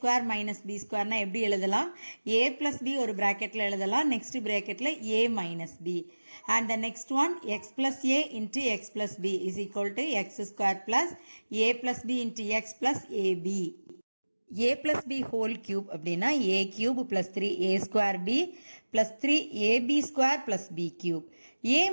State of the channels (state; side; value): inverted; both; correlation -1.00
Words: minus b square னா எப்படி எழுதலாம், a plus b ஒரு பிராக்கெட்ல எழுதலாம், next பிராக்கெட்ல a minus b, and the next one x plus a into x plus b is equal to x square plus a plus b into x plus ab. a plus b whole cube அப்படின்னா a cube plus 3a square b plus 3ab square plus b cube. a